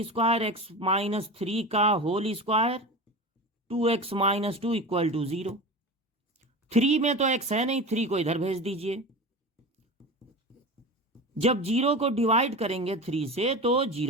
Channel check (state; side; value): normal; both; correlation 0.29